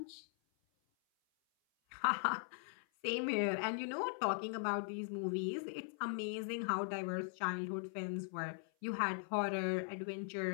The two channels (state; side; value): silent; right; 51 dB below the other